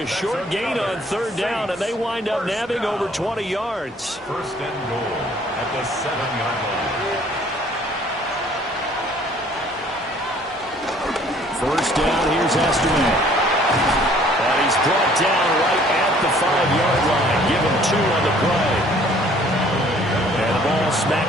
short gain on 3rd down, and they wind up nabbing over 20 yards. 1st and goal at the 7-yard line. 1st down, here's Estimate. And he's brought down right at the 5-yard line. Give him 2 on the play. And the ball smack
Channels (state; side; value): normal; both; correlation 0.57